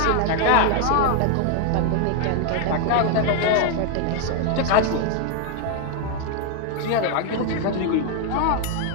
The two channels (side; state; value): both; different; correlation 0.01